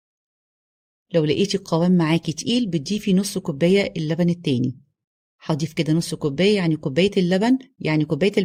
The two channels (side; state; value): both; identical; correlation 1.00